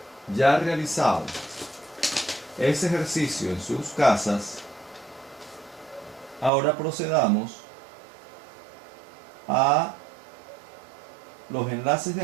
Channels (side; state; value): left; drops out; at 6.5 s